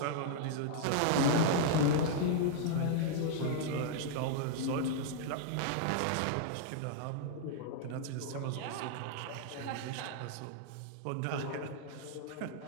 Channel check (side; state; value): both; different; correlation -0.01